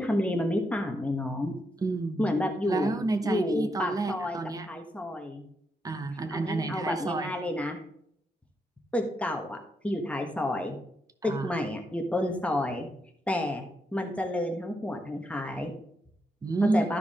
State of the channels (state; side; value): normal; both; correlation 0.81